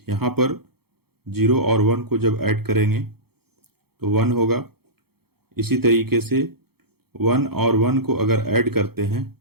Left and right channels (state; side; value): late; left; 0.96 ms